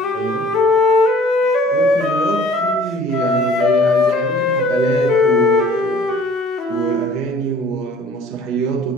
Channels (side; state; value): both; normal; correlation 0.52